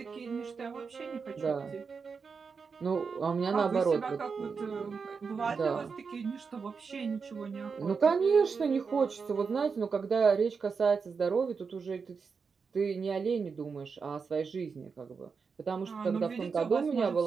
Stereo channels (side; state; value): left; quieter; 5.4 dB